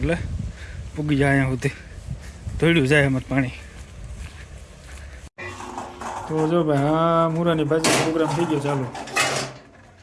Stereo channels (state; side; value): identical; both; correlation 1.00